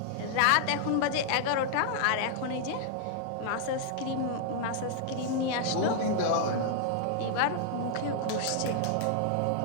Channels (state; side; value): different; both; correlation -0.01